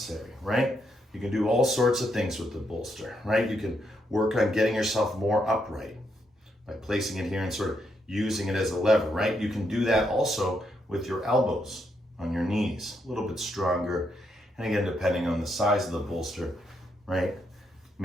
right? You can do all sorts of things with the bolster, right? You can work on getting yourself more upright by placing it here and sort of using it as a lever, right? You can do that also with your elbows on your knees, a little bit stronger. And again, depending on the size of the bolster, right?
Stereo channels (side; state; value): both; normal; correlation 0.78